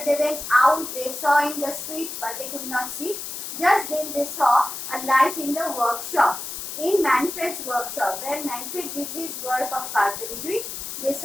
They went out. They saw in the street, but they could not see. Just then they saw a light in the workshop. In Manfred's workshop, where Manfred did his work of carpentry, they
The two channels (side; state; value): left; noise; hiss, 7 dB below the sound